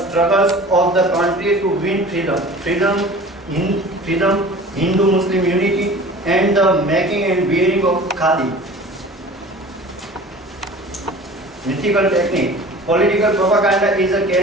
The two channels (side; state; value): both; normal; correlation 0.42